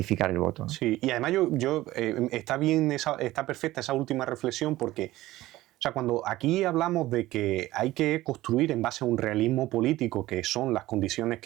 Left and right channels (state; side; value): quieter; left; 16.7 dB